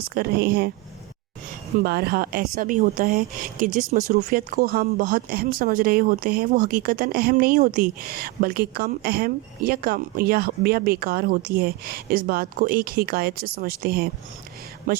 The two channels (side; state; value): left; quieter; 20.4 dB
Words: کر رہے ہیں۔ بارہا ایسا بھی ہوتا ہے کہ جس مصروفیت کو ہم بہت اہم سمجھ رہے ہوتے ہیں وہ حقیقتاً اہم نہیں ہوتی، بلکہ کم اہم یا بیکار ہوتی ہے۔ اس بات کو ایک حکایت سے سمجھتے ہیں۔